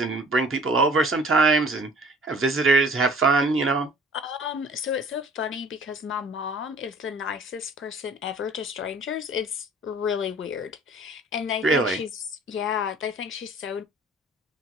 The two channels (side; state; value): both; normal; correlation 0.50